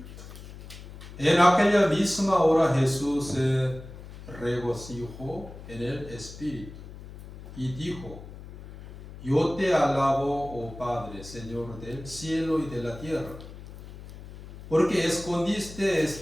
En aquella misma hora Jesús se regocijó en el Espíritu y dijo: Yo te alabo, oh Padre, Señor del cielo y de la tierra, porque escondiste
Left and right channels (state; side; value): noise; left; hum, 15 dB below the sound